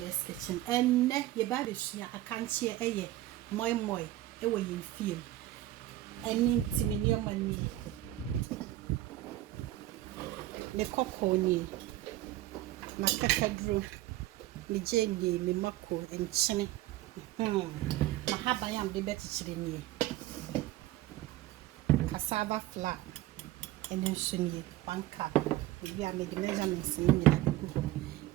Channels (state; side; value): quieter; left; 15.4 dB